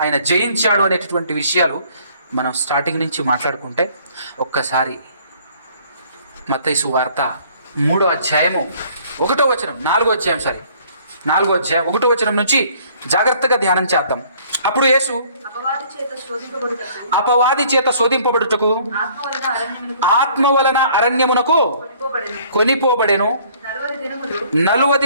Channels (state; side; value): inverted; both; correlation -0.57